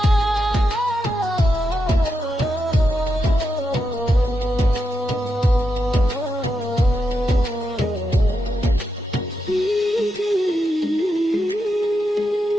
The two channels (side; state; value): both; normal; correlation 0.84